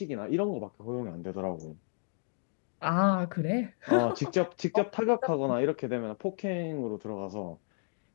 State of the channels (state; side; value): silent; right; digital silence